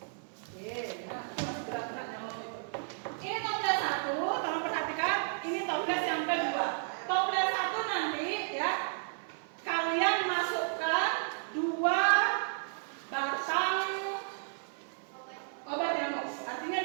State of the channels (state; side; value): silent; left; 56 dB below the other